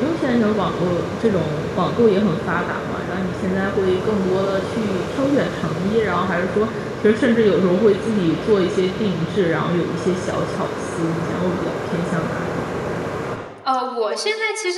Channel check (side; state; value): both; identical; correlation 1.00